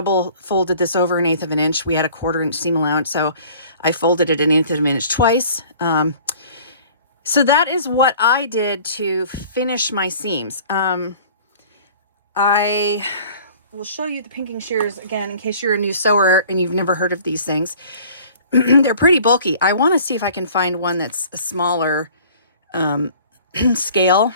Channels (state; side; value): inverted; both; correlation -0.50